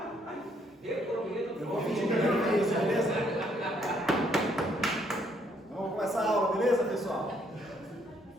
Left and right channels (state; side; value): normal; both; correlation 0.69